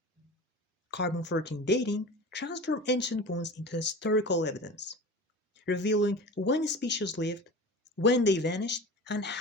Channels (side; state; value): both; normal; correlation 0.34